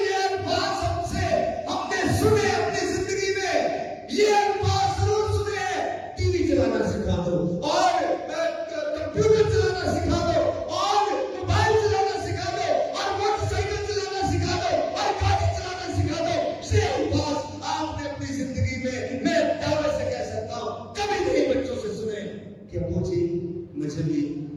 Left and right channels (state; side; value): identical; both; correlation 1.00